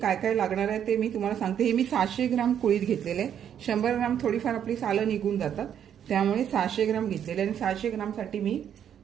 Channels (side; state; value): left; quieter; 9.2 dB